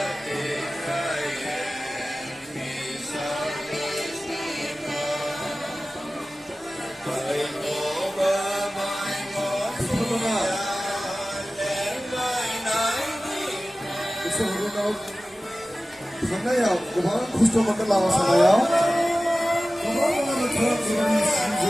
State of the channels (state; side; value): normal; both; correlation 0.96